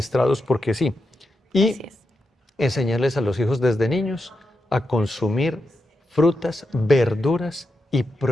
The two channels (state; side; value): normal; both; correlation 0.86